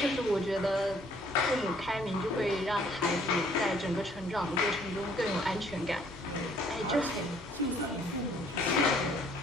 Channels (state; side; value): normal; both; correlation 0.62